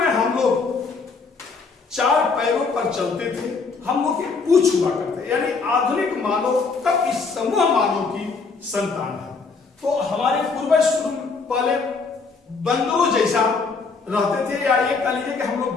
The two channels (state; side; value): quieter; right; 4.6 dB